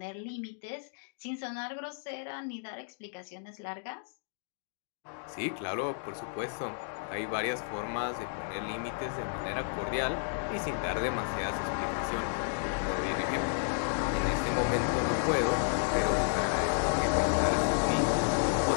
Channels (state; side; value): silent; right; digital silence